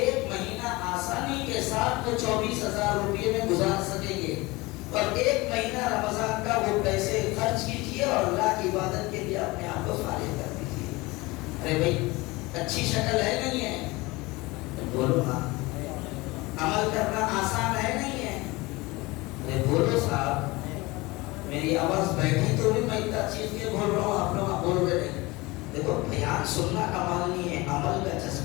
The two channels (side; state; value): right; quieter; 22.5 dB